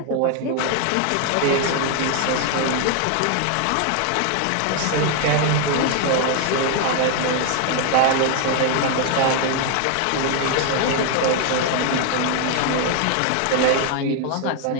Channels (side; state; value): both; different; correlation 0.00